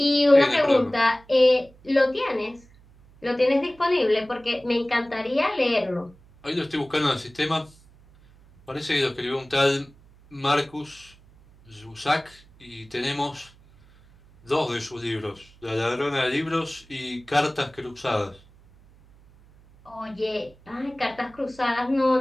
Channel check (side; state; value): right; noise; hum, 26 dB below the sound